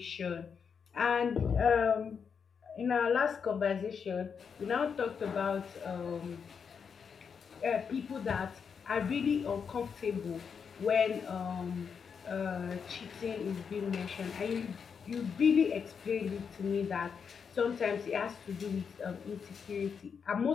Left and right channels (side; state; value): right; quieter; 6.4 dB